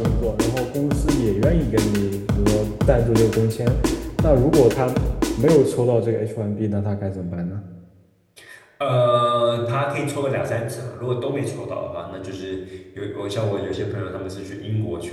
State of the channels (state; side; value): identical; both; correlation 1.00